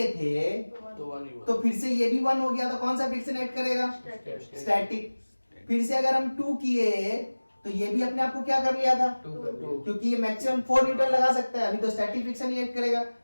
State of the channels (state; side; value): inverted; both; correlation -1.00